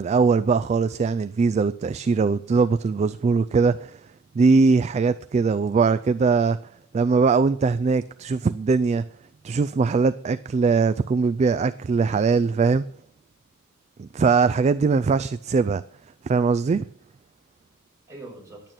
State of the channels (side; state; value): left; quieter; 4.4 dB